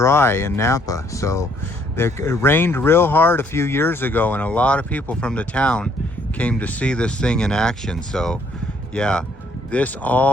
in Napa. So it rained real hard a few years ago, and a lot of people from the town came to see this thing in action. So yeah, this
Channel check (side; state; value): both; normal; correlation 0.66